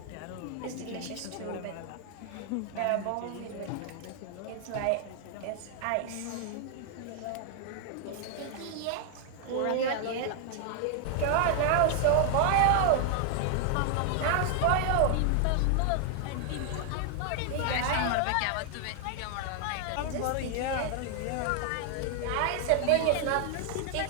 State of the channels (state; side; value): different; both; correlation 0.00